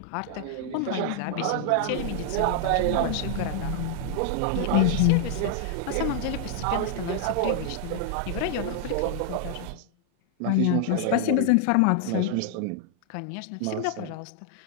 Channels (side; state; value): both; different; correlation 0.00